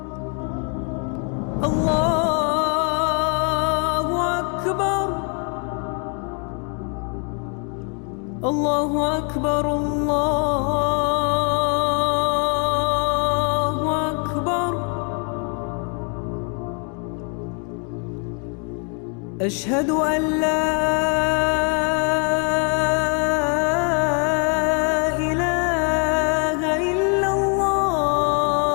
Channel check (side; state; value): right; quieter; 38.6 dB